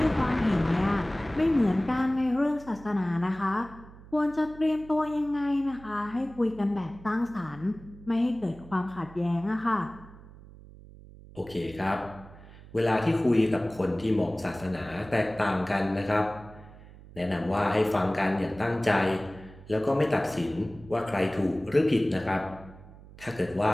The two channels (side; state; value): right; noise; hum, 19 dB below the sound